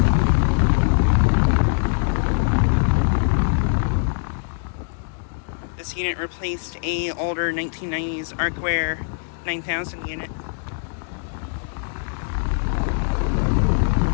This unit replaced a older 1990s Arcoaire 9000 unit.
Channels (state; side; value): silent; right; digital silence